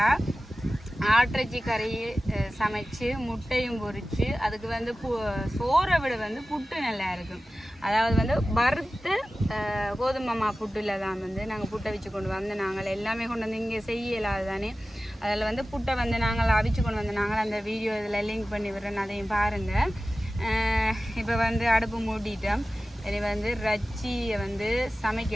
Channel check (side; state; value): both; normal; correlation 0.96